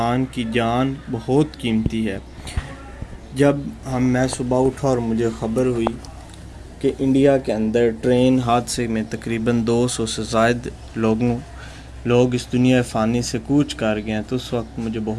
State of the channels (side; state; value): both; identical; correlation 1.00